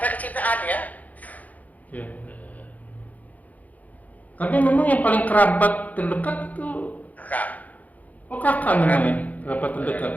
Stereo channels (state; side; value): late; right; 0.077 ms